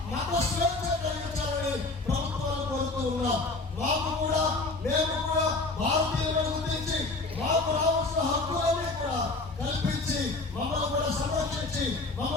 మత స్వేచ్ఛ కలిగించాలని ప్రభుత్వాలు కోరుతూ ఉన్నాం. మాకు కూడా, మేము కూడా భారతీయులను గుర్తించి మాకు రావాల్సిన హక్కులన్నీ కూడా కల్పించి మమ్మల్ని కూడా సంరక్షించి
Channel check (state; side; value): quieter; right; 3.3 dB